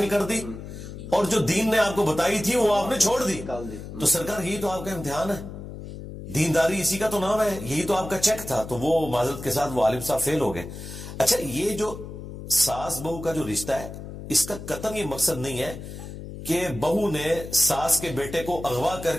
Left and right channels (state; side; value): noise; left; hum, 11 dB below the sound